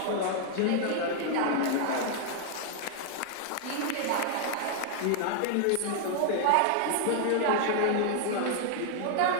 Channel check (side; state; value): both; different; correlation 0.00